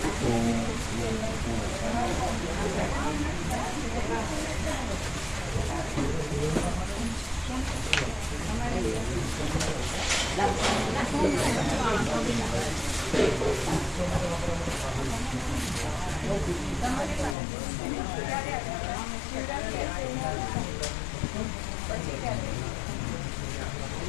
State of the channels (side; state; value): right; drops out; at 17.4 s